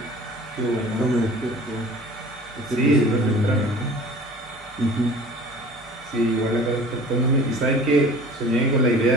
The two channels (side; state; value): both; normal; correlation 0.44